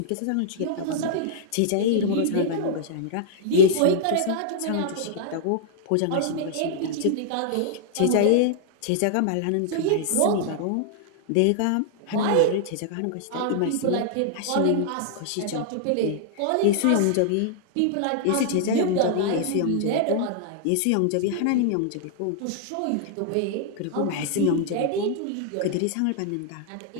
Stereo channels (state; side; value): different; both; correlation -0.01